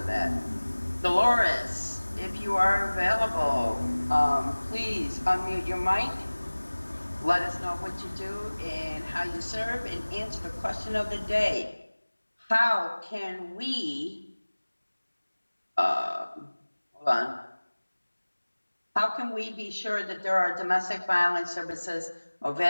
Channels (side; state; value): both; inverted; correlation -1.00